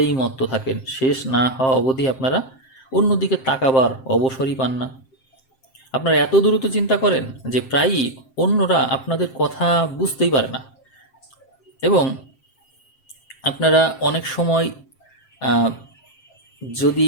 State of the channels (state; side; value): late; right; 7.6 ms